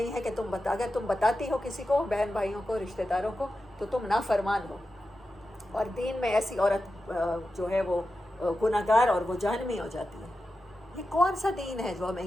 ہے کہ اگر تم بتاتی ہو کسی کو، بہن بھائیوں کو، رشتہ داروں کو، تو تم نافرمان ہو. اور دین میں ایسی عورت جو ہے وہ گناہ گار اور وہ جہنمی ہو جاتی ہے. یہ کون سا دین ہے جو ہمیں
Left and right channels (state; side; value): normal; both; correlation 0.91